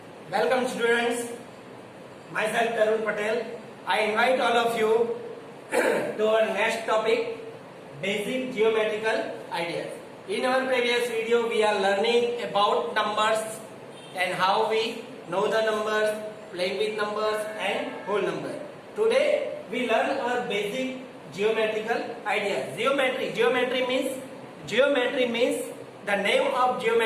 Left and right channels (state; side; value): identical; both; correlation 1.00